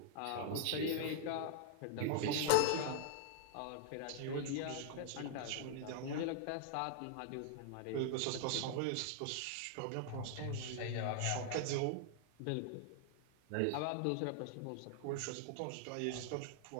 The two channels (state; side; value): different; both; correlation 0.00